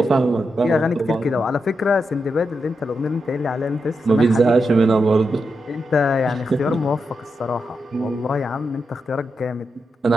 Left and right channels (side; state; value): both; normal; correlation 0.86